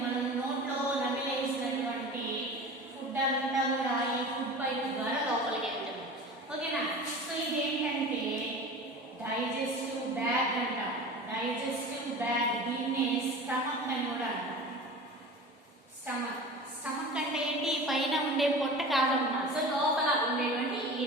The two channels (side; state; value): both; normal; correlation 0.36